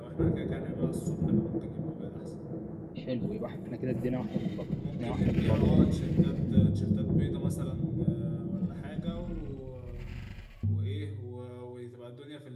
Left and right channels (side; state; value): both; identical; correlation 1.00